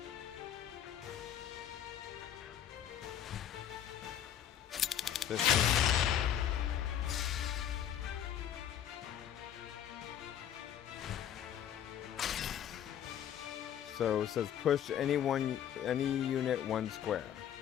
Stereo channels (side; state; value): right; quieter; 10.0 dB